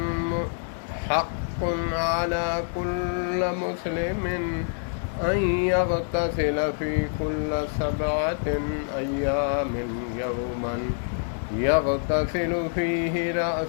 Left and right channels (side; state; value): right; silent; digital silence